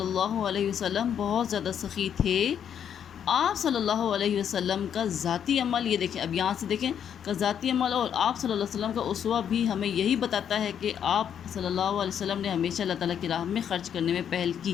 اللہ علیہ وسلم بہت زیادہ سخی تھے۔ آپ صلی اللہ علیہ وسلم کا ذاتی عمل، یہ دیکھیں اب یہاں سے دیکھیں کہ ذاتی عمل اور آپ صلی اللہ علیہ وسلم کا اسوہ بھی ہمیں یہی بتاتا ہے کہ آپ صلی اللہ علیہ وسلم نے ہمیشہ اللہ تعالیٰ کی راہ میں خرچ کرنے میں پہل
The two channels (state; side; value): quieter; right; 8.7 dB